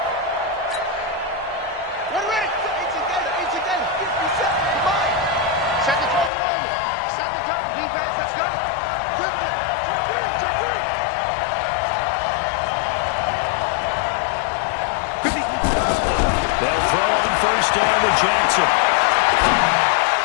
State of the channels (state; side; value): drops out; right; at 6.3 s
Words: They'll throw on first down to Jackson.